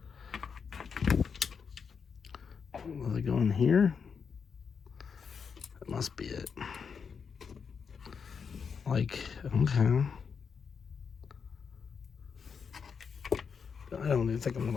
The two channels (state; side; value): quieter; right; 6.2 dB